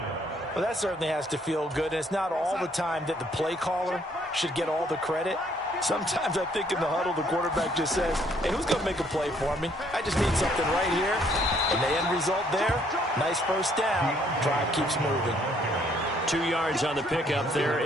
Well, that certainly has to feel good. And it's not all the time that the play caller should get all the credit. Sometimes I think in the huddle, the quarterback just says, hey, who's going to make a play for me? I just need something right here. And the end result there, nice first down. Drive keeps moving. 2 yards on the pickup there.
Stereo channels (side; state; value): both; normal; correlation 0.66